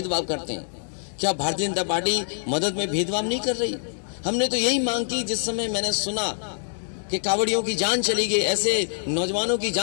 करते हैं। क्या भारतीय जनता पार्टी मदद में भेदभाव नहीं कर रही? हमने तो यही मांग की जिस समय मैंने सुना कि कांवड़ियों की जान चली गई, ऐसे नौजवानों की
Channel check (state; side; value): silent; right; digital silence